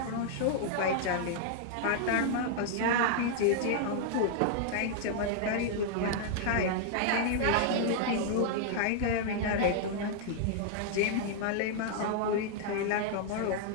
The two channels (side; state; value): both; different; correlation -0.01